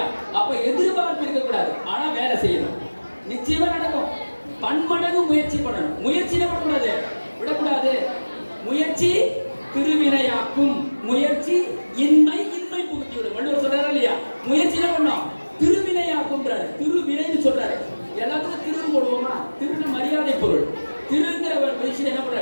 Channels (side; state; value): both; inverted; correlation -1.00